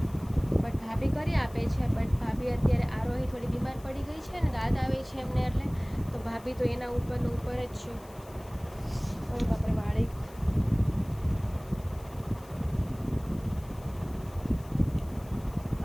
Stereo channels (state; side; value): noise; left; hiss, 24 dB below the sound